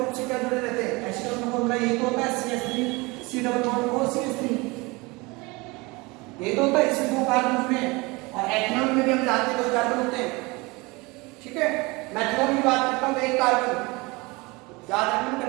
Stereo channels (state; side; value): quieter; left; 24.8 dB